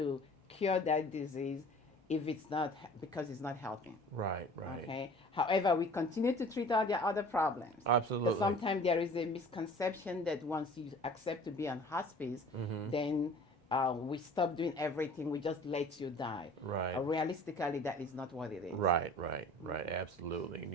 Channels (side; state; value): both; normal; correlation 0.46